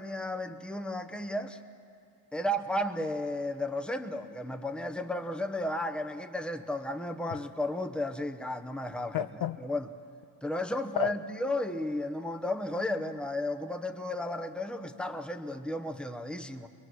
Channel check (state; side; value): normal; both; correlation 0.70